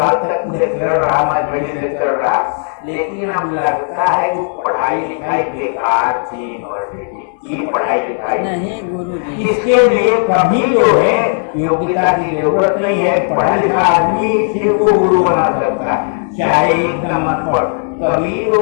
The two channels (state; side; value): silent; right; 57 dB below the other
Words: तक लेक्चरर रहा, मैं बड़ी लेक्चरर रहा, लेकिन अब लगता है कि पढ़ाई लिखाई बेकार थी यूनिवर्सिटी की पढ़ाई लिखाई नहीं गुरु जी। इसके लिए कभी जो है योग्यता की जरूरत नहीं है, पढ़ा लिखा आदमी सिर्फ को गुरु बना सकता है, चाहे एकदम अनपढ़। कबीर